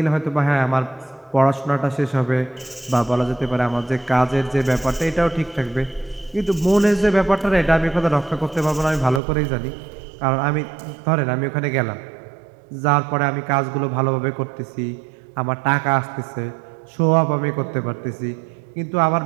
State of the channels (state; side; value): drops out; left; at 9.2 s